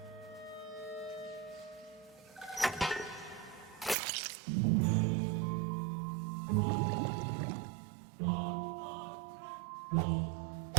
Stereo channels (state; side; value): drops out; left; at 4.0 s